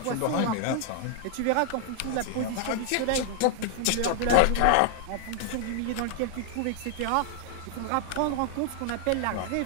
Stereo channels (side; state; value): both; different; correlation 0.00